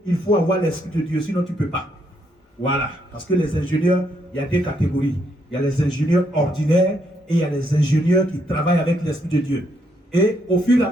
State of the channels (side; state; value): both; normal; correlation 0.75